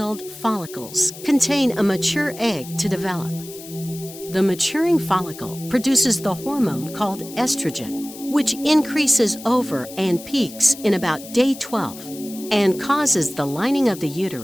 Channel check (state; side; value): noise; left; hiss, 15 dB below the sound